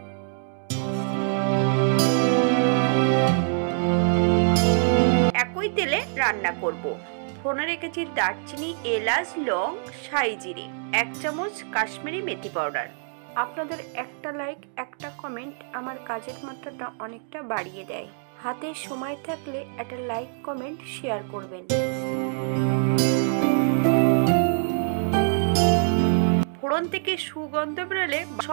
একই তেলে রান্না করব। ফোড়নে রেখেছি দারচিনি, এলাচ, লং, সাই জিরে, 1 চামচ কাশ্মীরি মেথি পাউডার। আপনাদের একটা লাইক, একটা কমেন্ট আমার কাজের মাত্রাটা অনেকটা বাড়িয়ে দেয়। হাতে সময় থাকলে একটা লাইক, কমেন্ট, শেয়ার করবেন। ফোড়ন থেকে সুগন্ধ বেরোলে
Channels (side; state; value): left; silent; digital silence